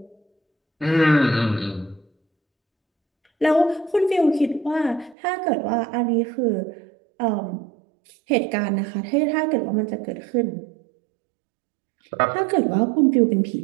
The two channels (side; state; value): left; drops out; at 5.2 s